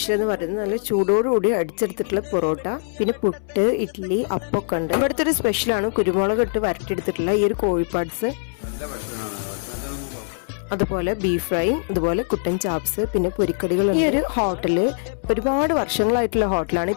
എന്ന് പറയുന്നത് നല്ല ചൂടോടുകൂടി അടിച്ചെടുത്തിട്ടുള്ള പൊറോട്ട, പിന്നെ പുട്ട്, ഇഡ്ഡലി, അപ്പൊക്കെ ഉണ്ട്. ഇവിടുത്തെ ഒരു സ്പെഷ്യലാണ് കുരുമുളക് ഇട്ട് വരട്ടിയെടുത്തിട്ടുള്ള ഈ ഒരു കോഴിപ്പാട്സ്, അതുപോലെ ബീഫ് ഫ്രൈ, അതുപോലെ കുട്ടൻ ചാപ്സ്, പിന്നെ പൊരിക്കടികൾ. ഈ ഒരു ഹോട്ടല് ഒരുപാട് വർഷങ്ങളായിട്ടുള്ള ഹോട്ടലാണ്.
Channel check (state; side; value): silent; right; 64 dB below the other